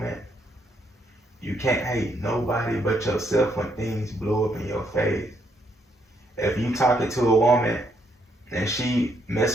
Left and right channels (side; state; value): both; normal; correlation 0.74